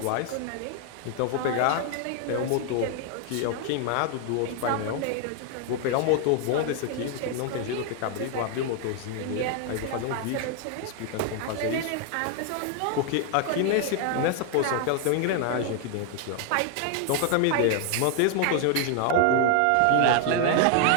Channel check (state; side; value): different; both; correlation 0.00